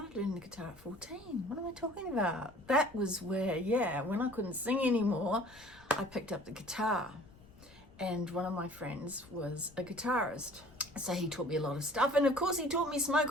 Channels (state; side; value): noise; left; rumble, 24 dB below the sound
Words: learning the guitar at 14. What am I talking about? That was where, yeah, when I couldn't sing anymore, I picked up the guitar. And one of my friends was a guitarist. So he taught me a lot of stuff. And of course he taught me